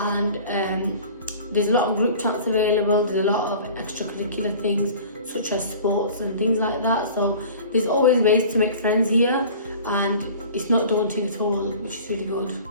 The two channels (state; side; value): inverted; both; correlation -0.43